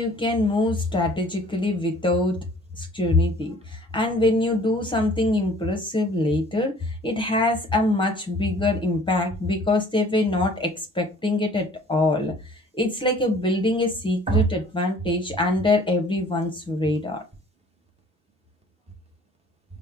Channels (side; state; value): both; normal; correlation 0.53